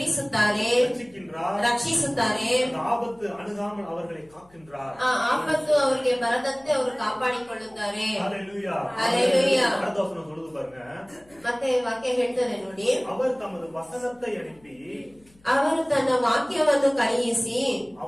ரட்சிக்கின்றார். ರಕ್ಷಿಸುತ್ತಾರೆ. அந்த ஆபத்து அணுகாமல் அவர்களை காக்கின்றார். ಆ ಆಪತ್ತು ಅವರಿಗೆ ಬರದಂತೆ ಅವರು ಕಾಪಾಡಿಕೊಳ್ಳುತ್ತಾರೆ. ஹalleluya. ஹalleluya. அடுத்த வசனம் சொல்லுது பாருங்க, ಮತ್ತೆ ವಾಕ್ಯ ಹೇಳ್ತಾರೆ ನೋಡಿ, அவர் தமது வசனத்தை அனுப்பி ಅವರು ತನ್ನ ವಾಕ್ಯವನ್ನು ಕಳುಹಿಸಿ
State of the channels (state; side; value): noise; left; hum, 30 dB below the sound